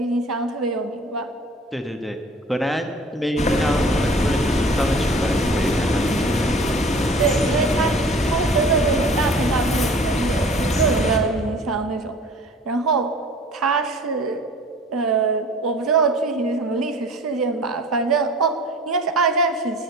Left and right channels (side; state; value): both; normal; correlation 0.46